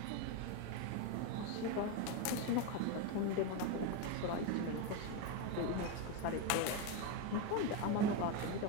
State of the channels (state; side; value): different; both; correlation 0.03